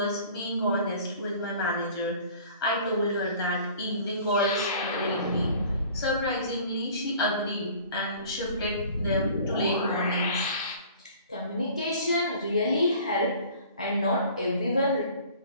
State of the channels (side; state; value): both; inverted; correlation -0.48